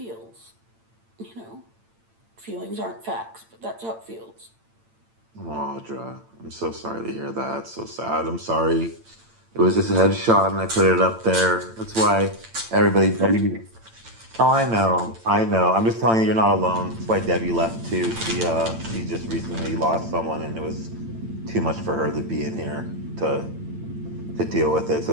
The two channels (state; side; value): late; left; 8.9 ms